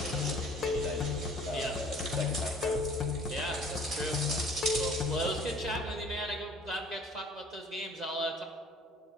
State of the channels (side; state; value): both; normal; correlation 0.52